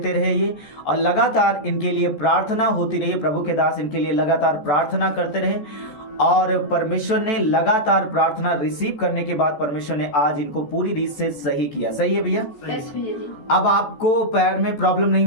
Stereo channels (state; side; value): late; right; 14 ms